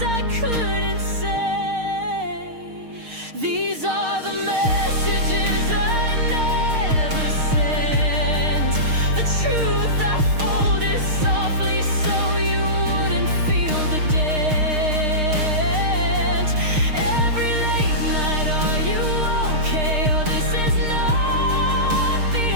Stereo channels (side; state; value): left; late; 6.5 ms